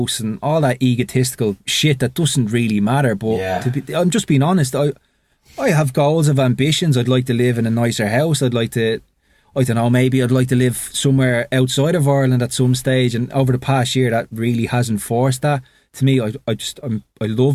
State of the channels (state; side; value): identical; both; correlation 1.00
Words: and all that egotistical shit that doesn't really matter. But I'm just being honest, I have goals of ambitions. I'd like to live in a nicer house. I'd like to, I don't know, maybe I'd like to live somewhere outside of Ireland at some stage. And over the past year, that really hasn't forced that. To me, I